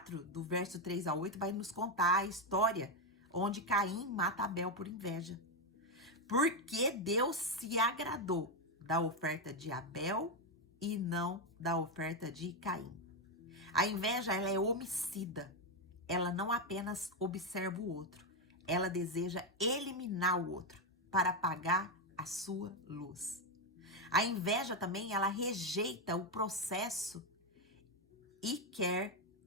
do verso 3 a 8, vai nos contar a história onde Caim mata Abel por inveja. Porque Deus se agradou da oferta de Abel e não da oferta de Caim. A inveja, ela é homicida. Ela não apenas observa o outro, ela deseja eliminar o outro para apagar a sua luz. A inveja também, ela rejeita o processo e quer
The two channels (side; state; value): both; normal; correlation 0.06